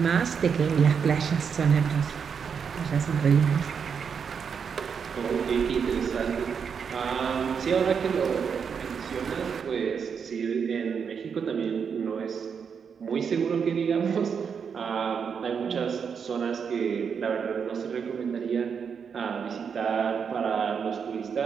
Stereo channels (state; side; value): quieter; left; 6.6 dB